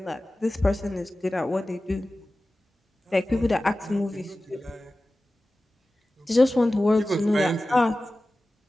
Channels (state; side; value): normal; both; correlation 0.96